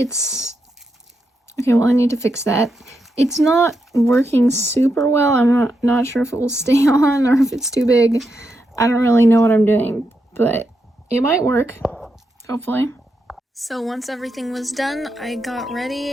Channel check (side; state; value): both; normal; correlation 0.84